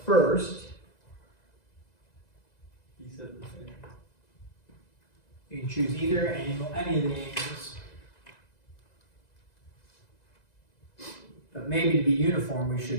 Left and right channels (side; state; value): right; late; 2.0 ms